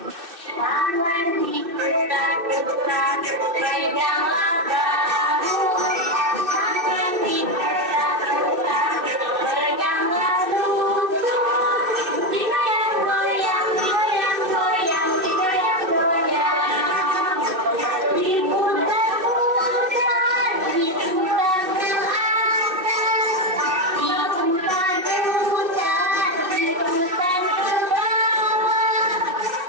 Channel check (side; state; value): left; late; 2.8 ms